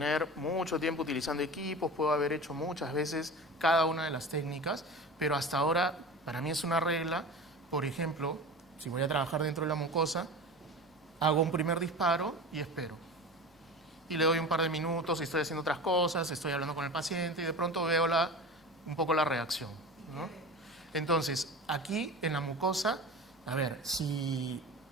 mucho tiempo utilizando equipos, puedo haber hecho muchas veces cada una de las técnicas, pero hasta ahora para mí es una regla. Por ejemplo, si voy a trabajar dentro de la mucosa, hago un primer disparo y espero. Y le doy un par de minutos, estoy haciendo otras cosas, estoy hablando con el paciente y de pronto veo un poco la reacción, ¿no? Entonces, aquí en la mucosa, a ver, si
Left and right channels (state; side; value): normal; both; correlation 0.32